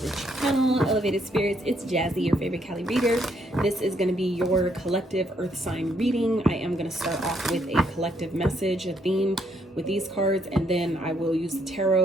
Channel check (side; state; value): both; normal; correlation 0.72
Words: the channel. Elevated spirits, it's Jazzy, your favorite Cali reader. This is going to be your collective Earth sign reading. I am going to start off with a collective message, a theme with these cards, and then I will use the